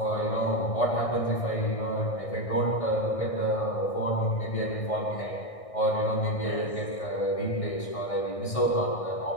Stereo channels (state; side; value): late; right; 1.6 ms